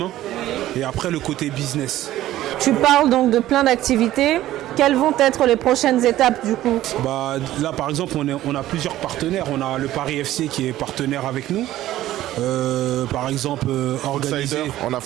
et après le côté business. Tu parles donc de plein d'activités. Quelles vont être les prochaines étapes du coup? Là, par exemple, on a plusieurs partenaires. On a le Paris FC qui est partenaire avec nous. Par exemple, organisé. On a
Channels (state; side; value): quieter; left; 14.3 dB